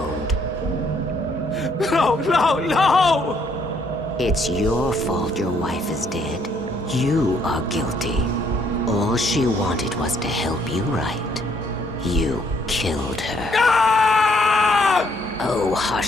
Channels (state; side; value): normal; both; correlation 0.68